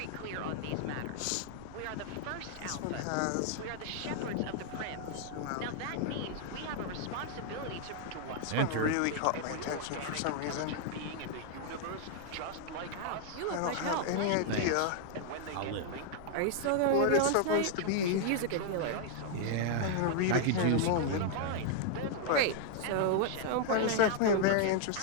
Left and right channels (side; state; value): both; different; correlation 0.00